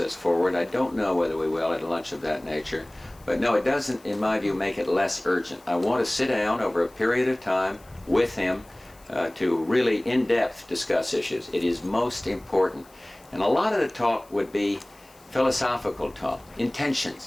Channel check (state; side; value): noise; left; hiss, 28 dB below the sound